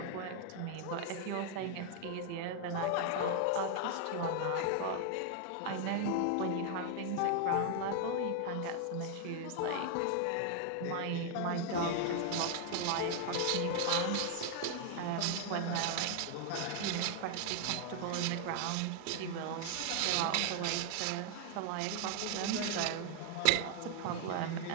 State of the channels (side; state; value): both; different; correlation 0.00